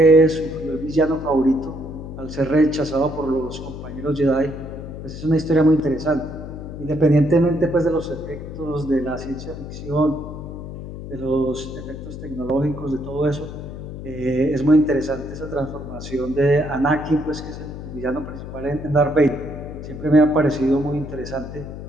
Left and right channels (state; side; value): noise; left; hum, 10 dB below the sound